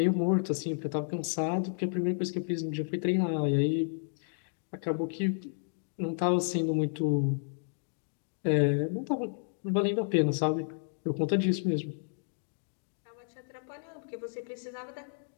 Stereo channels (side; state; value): right; silent; digital silence